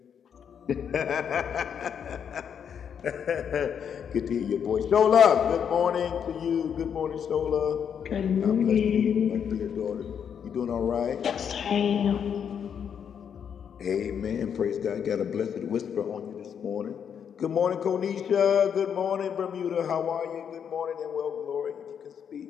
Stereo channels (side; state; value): right; quieter; 7.8 dB